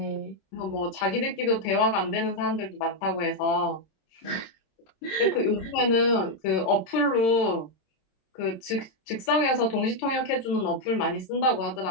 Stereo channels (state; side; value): late; right; 26 ms